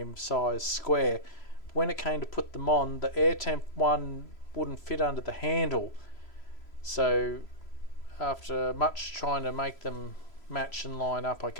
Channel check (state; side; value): late; right; 3.0 ms